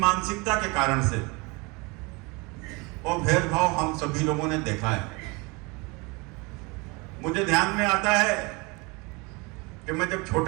के कारण से वो भेदभाव हम सभी लोगों ने देखा है। मुझे ध्यान में आता है कि मैं जब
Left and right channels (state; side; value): quieter; left; 27.4 dB